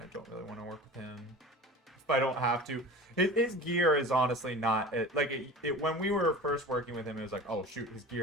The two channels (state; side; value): normal; both; correlation 0.36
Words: don't really want to work with him. If I don't have to. His gear is honestly not, when we were first working with him, it was like, oh shoot, his